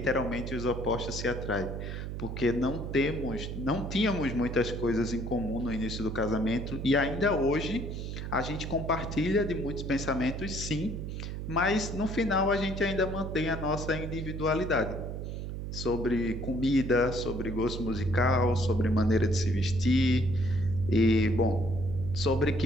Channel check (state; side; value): noise; right; hum, 6 dB below the sound